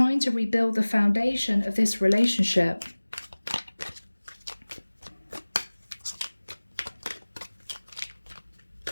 to rebuild the foundation of this relationship.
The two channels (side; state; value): both; inverted; correlation -1.00